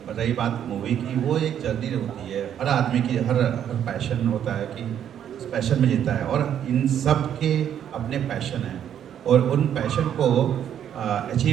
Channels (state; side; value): quieter; left; 9.6 dB